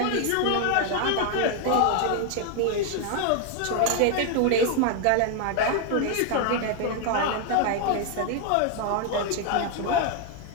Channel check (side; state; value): both; different; correlation 0.00